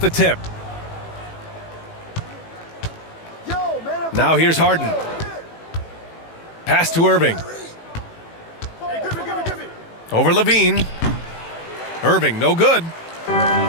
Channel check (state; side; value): late; right; 18 ms